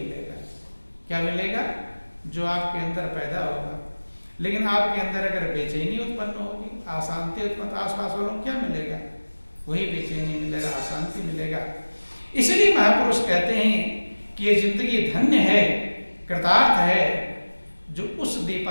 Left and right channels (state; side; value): inverted; both; correlation -1.00